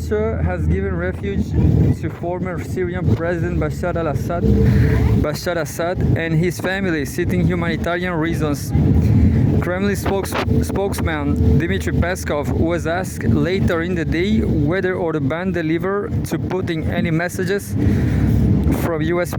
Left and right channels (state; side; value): identical; both; correlation 1.00